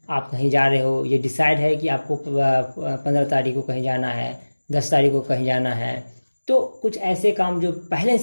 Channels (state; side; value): inverted; both; correlation -1.00